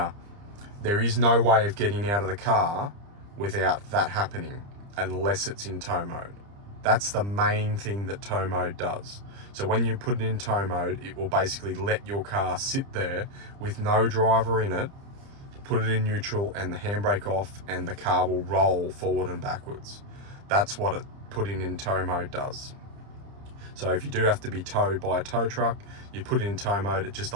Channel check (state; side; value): late; left; 30 ms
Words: there is no way of getting out of the car without that happening unless it's in tow mode. That's the main thing that tow mode does. So when you put it in tow mode, it will basically let your car sit there with no driver in it, put it in neutral and the handbrake off, and the car will roll forward and backwards. That's what it putting in tow mode does. So if you do have to be towed by a tow truck, you put it in tow mode, it just